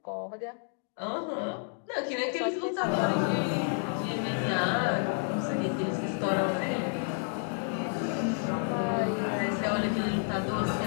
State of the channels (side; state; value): right; silent; 58 dB below the other